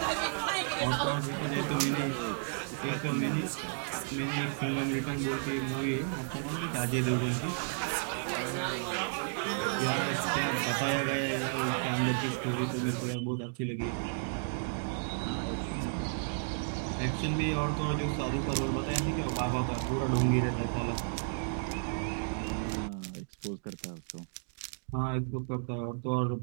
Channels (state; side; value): silent; left; digital silence